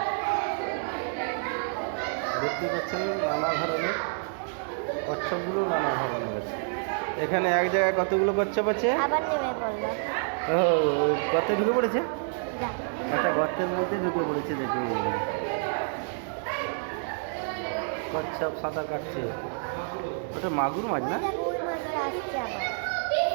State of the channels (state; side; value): silent; left; 59 dB below the other